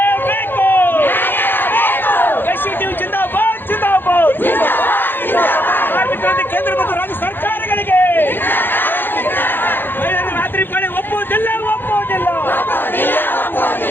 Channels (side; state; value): right; late; 0.098 ms